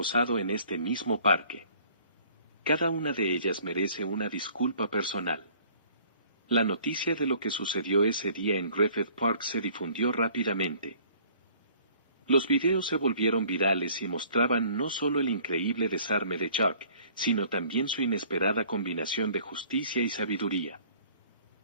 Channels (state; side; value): inverted; both; correlation -0.55